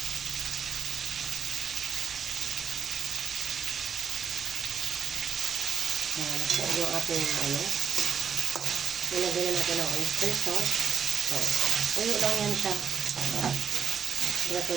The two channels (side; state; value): left; quieter; 7.3 dB